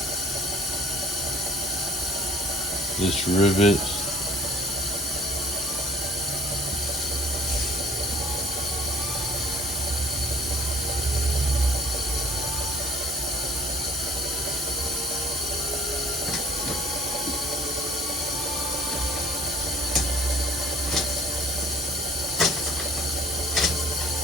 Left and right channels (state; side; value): normal; both; correlation 0.52